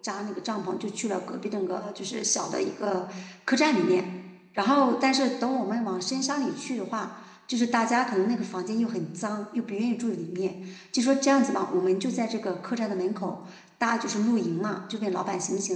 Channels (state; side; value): identical; both; correlation 1.00